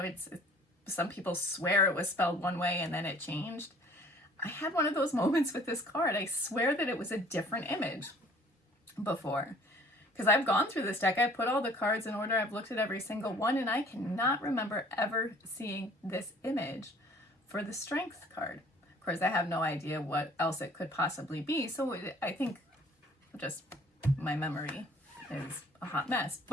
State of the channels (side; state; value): both; normal; correlation 0.53